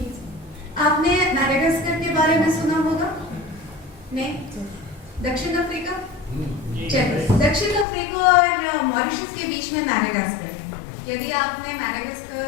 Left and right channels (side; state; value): right; drops out; at 7.9 s